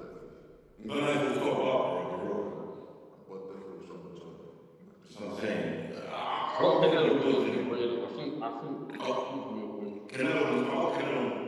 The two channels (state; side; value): identical; both; correlation 1.00